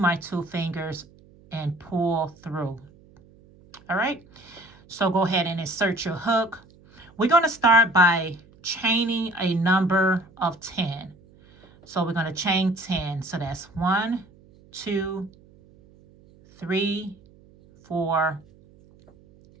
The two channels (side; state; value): right; noise; hum, 27 dB below the sound